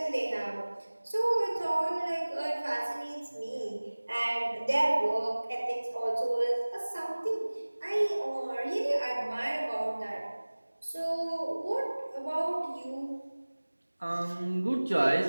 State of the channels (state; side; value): inverted; both; correlation -1.00